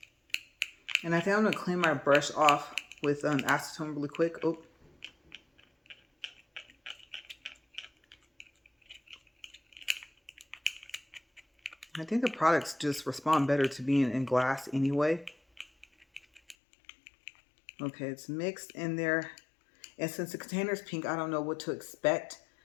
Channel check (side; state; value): right; drops out; at 16.6 s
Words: And I think I'm going to clean my brush off with acetone really quick. Oh. I think the products just respond better to being in glass anyway. Okay, it's mixed in there. And since the container's pink, I don't know what to expect.